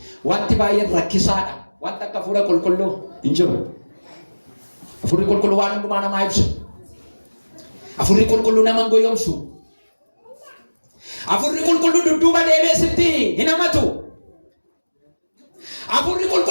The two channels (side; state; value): both; inverted; correlation -1.00